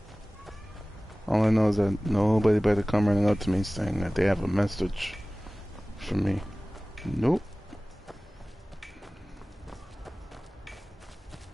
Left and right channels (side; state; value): both; normal; correlation 0.98